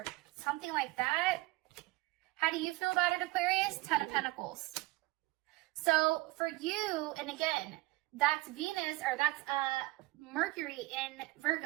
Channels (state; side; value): quieter; left; 21.0 dB